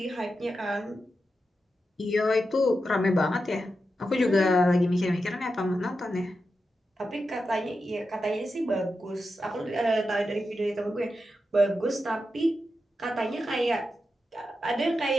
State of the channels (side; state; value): both; normal; correlation 0.89